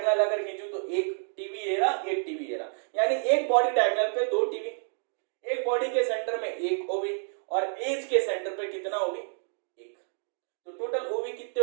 अगर खींचूं तो एक टीवी ये रहा, एक टीवी ये रहा। यानी एक बॉडी डायगोनल पे 2 टीवी, एक बॉडी के सेंटर में एक ओवी, और एज के सेंटर पे कितना ओवी, 1। तो टोटल ओवी कितने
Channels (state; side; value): silent; left; digital silence